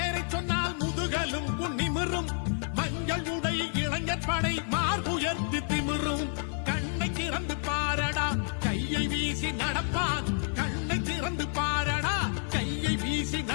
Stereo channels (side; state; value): right; silent; 56 dB below the other